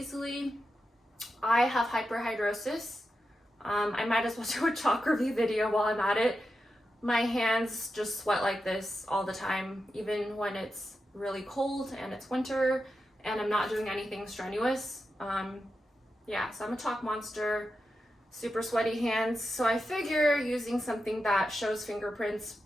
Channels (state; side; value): normal; both; correlation 0.89